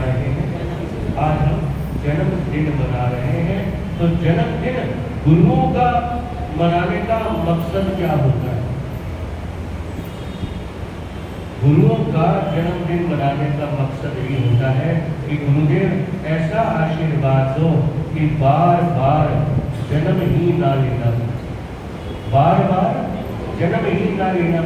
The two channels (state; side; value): identical; both; correlation 1.00